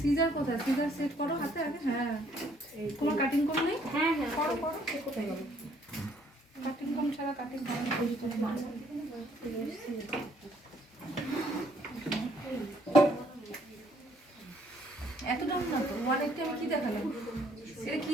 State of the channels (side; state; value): both; normal; correlation 0.64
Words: কোথায়? সিজার সেট করো হাতে আগে। হ্যাঁ, তোমার কাটিং কম নেই? হ্যাঁ হ্যাঁ, করো করো। কোথায় গেল কাটিং কম? ছাড়া কাটিং হয় না। এত দাম না তো, 180 আমি কি দেখালাম? এটা কি